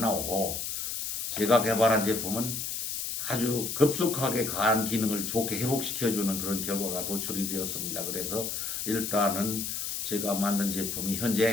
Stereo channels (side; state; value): left; noise; hiss, 4 dB below the sound